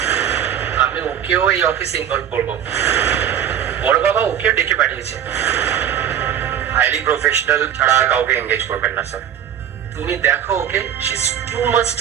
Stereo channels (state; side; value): quieter; left; 9.9 dB